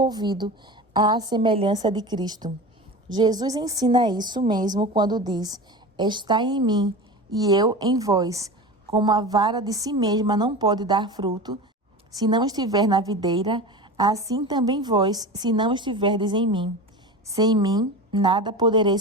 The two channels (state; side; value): normal; both; correlation 0.30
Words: à semelhança de Cristo. Jesus ensina isso mesmo quando diz, estai em mim e eu em vós. Como a vara de si mesma não pode dar fruto, se não estiver na videira, assim também vós, se não estiverdes em mim. Sem mim, nada